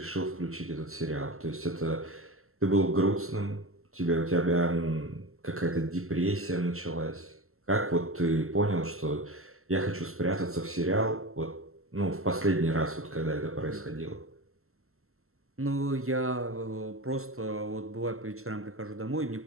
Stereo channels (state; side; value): late; left; 0.62 ms